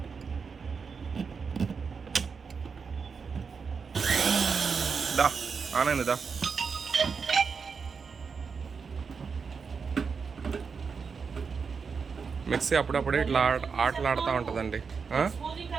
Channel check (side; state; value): left; quieter; 5.5 dB